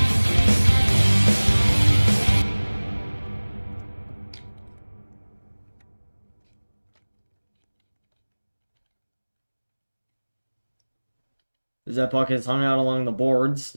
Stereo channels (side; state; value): both; inverted; correlation -1.00